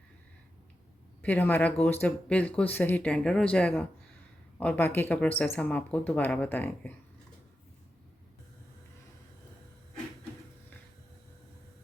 फिर हमारा गोश्त बिल्कुल सही टेंडर हो जाएगा और बाकी का प्रोसेस हम आपको दोबारा बताएंगे।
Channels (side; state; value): both; normal; correlation 0.90